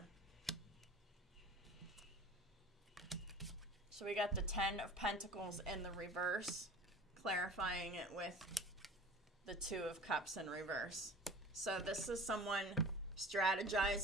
So we got the Ten of Pentacles in the reverse, clarifying it with the Two of Cups in reverse. So this is someone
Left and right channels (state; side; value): normal; both; correlation 0.41